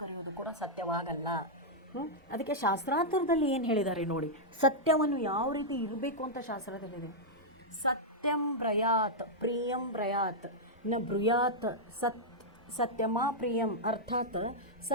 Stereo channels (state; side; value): normal; both; correlation -0.06